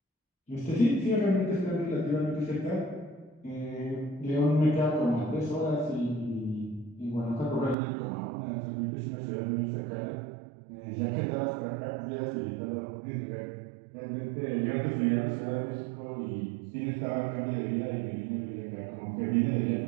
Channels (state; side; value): drops out; left; at 7.8 s